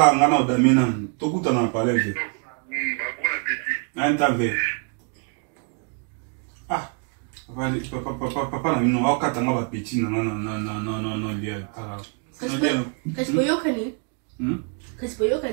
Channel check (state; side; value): quieter; left; 38.7 dB